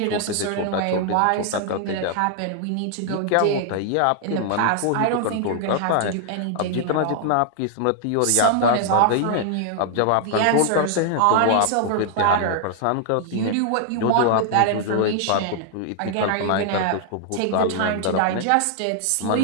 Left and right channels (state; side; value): different; both; correlation 0.00